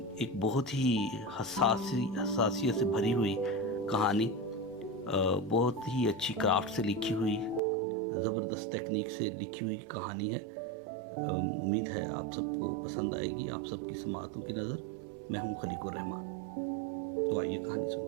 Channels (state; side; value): drops out; left; at 7.6 s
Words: ایک بہت ہی حساسیت سے بھری ہوئی کہانی، بہت ہی اچھی کرافٹ سے لکھی ہوئی، زبردست ٹیکنیک سے لکھی ہوئی کہانی ہے۔ امید ہے آپ سب کو پسند آئے گی، آپ سب کی سماعتوں کی نظر۔ میں ہوں خلیق الرحمن، تو آئیے کہانی